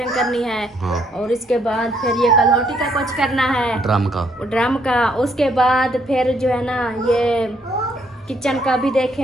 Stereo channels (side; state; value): both; normal; correlation 0.70